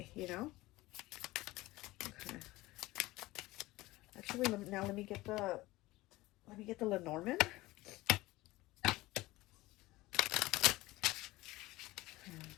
you know? Okay. Actually, let me get the Lenormand.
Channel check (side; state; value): right; quieter; 19.1 dB